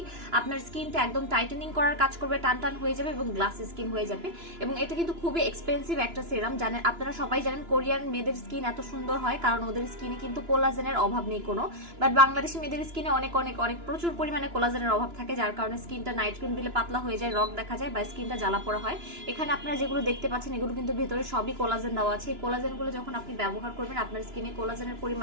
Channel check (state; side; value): late; left; 2.9 ms